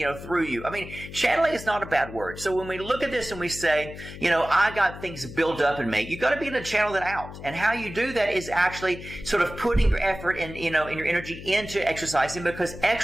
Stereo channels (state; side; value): noise; left; hum, 13 dB below the sound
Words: through you. I mean, channeling is not a bad word. So when we look at this and we say, you know, I got things built up in me, you got to be able to channel that out. And how you do that is actually sort of putting your effort and, you know, and your energy into exercising, because